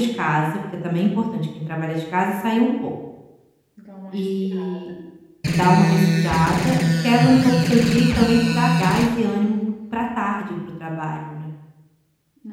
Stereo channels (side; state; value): both; identical; correlation 1.00